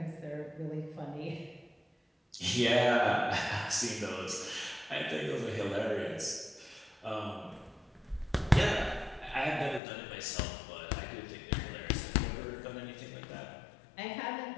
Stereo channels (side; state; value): right; drops out; at 9.8 s